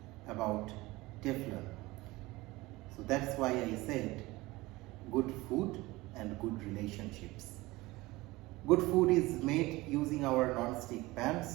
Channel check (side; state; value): left; quieter; 20.5 dB